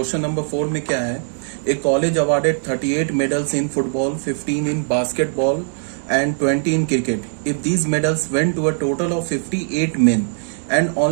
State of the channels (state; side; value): silent; left; 66 dB below the other